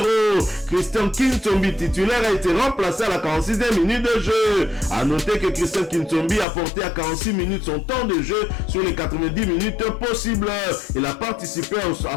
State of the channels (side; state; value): right; drops out; at 6.5 s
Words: Christian Kintombi, titulaire, a été remplacé à la 46e minute de jeu. A noter que Christian Kintombi a porté à 46 minutes son temps de jeu sur les 90 minutes possibles. Il a participé à